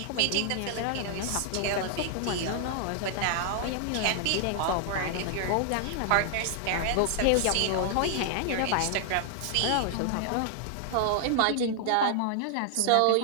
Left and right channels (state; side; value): different; both; correlation 0.00